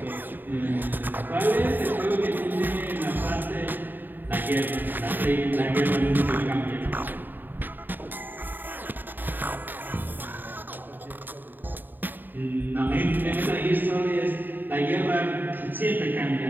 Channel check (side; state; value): left; late; 0.091 ms